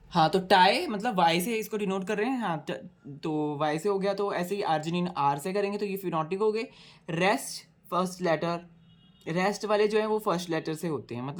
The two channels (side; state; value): both; identical; correlation 1.00